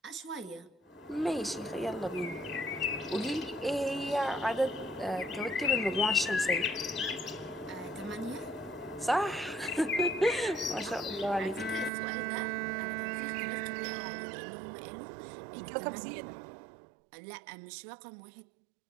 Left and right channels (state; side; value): drops out; left; at 11.9 s